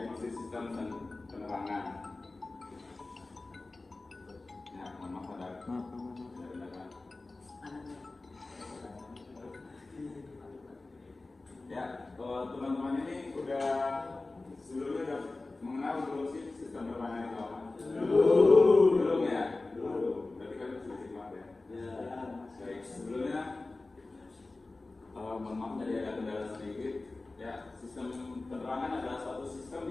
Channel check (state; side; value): quieter; right; 3.3 dB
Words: sistem dan penerangan. Ya, mohon maaf ada kendala. Ya, teman-teman ini udah sebelumnya udah mengenal belum sih sistem penerangan itu apa? Belum ya? Belum. Berarti kan sudah simak ya? Baik, sebelumnya mohon maaf tadi ada kendala sedikit. Ya, sistem penerangan adalah suatu sistem